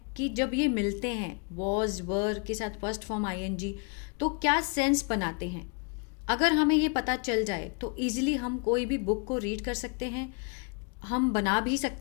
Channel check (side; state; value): right; quieter; 36.0 dB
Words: कि जब ये मिलते हैं वॉज वर के साथ फर्स्ट फॉर्म आईएनजी तो क्या सेंस बनाते हैं। अगर हमें ये पता चल जाए तो इजीली हम कोई भी बुक को रीड कर सकते हैं, हम बना भी